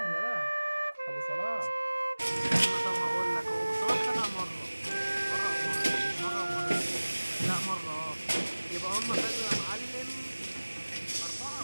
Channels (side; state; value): both; inverted; correlation -1.00